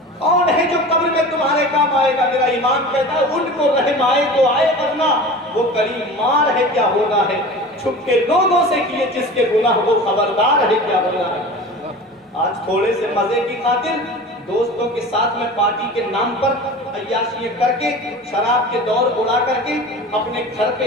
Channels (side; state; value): both; normal; correlation 0.36